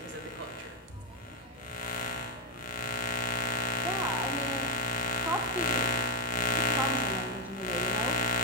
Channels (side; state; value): both; normal; correlation 0.05